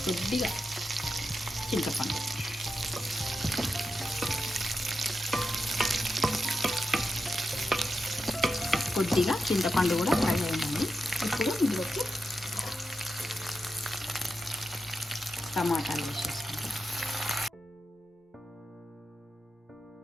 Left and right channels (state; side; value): normal; both; correlation 0.88